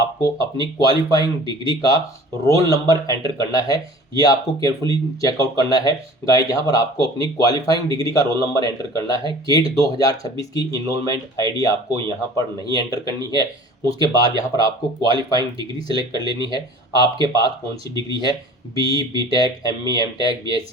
अपनी क्वालिफाइंग डिग्री का रोल नंबर एंटर करना है। ये आपको केयरफुली चेकआउट करना है गाइस। यहाँ पर आपको अपनी क्वालिफाइंग डिग्री का रोल नंबर एंटर करना है। गेट 2026 की इनरोलमेंट आईडी आपको यहाँ पर नहीं एंटर करनी है। उसके बाद यहाँ पर आपको क्वालिफाइंग डिग्री सेलेक्ट कर लेनी है, आपके पास कौन सी डिग्री है, BE, BTech, ME, MTech,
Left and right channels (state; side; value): normal; both; correlation 0.45